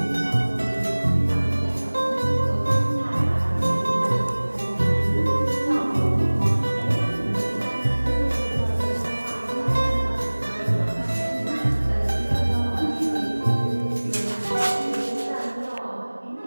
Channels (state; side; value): inverted; both; correlation -1.00